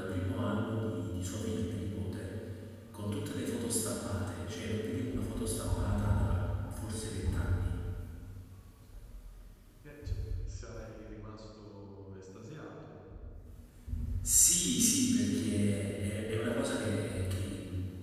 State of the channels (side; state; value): both; identical; correlation 1.00